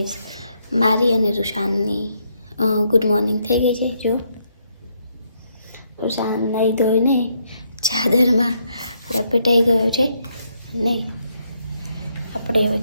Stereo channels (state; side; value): inverted; both; correlation -0.75